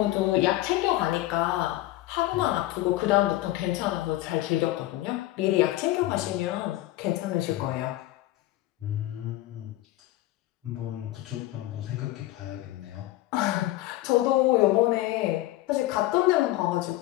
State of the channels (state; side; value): quieter; right; 16.4 dB